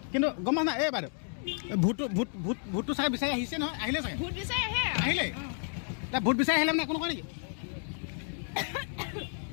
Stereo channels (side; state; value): right; silent; 57 dB below the other